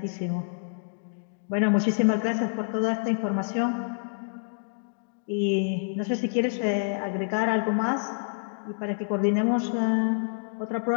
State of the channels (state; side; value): silent; right; digital silence